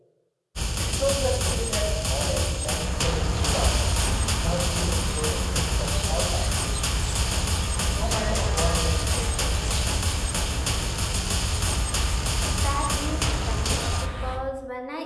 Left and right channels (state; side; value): identical; both; correlation 1.00